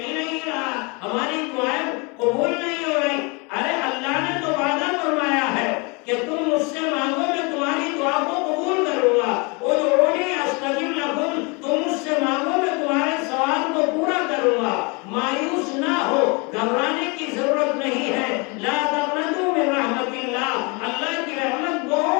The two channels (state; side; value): quieter; right; 30.2 dB